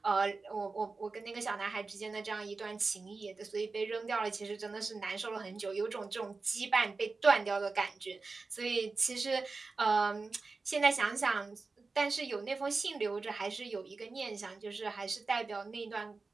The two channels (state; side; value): quieter; left; 4.0 dB